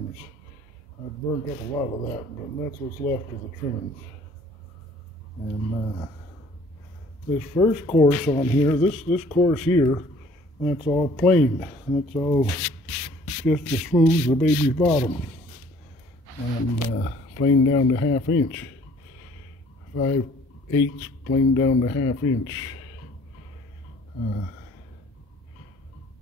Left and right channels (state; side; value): normal; both; correlation 0.55